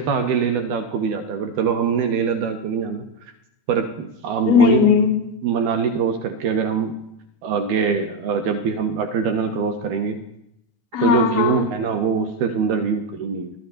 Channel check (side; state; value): left; late; 12 ms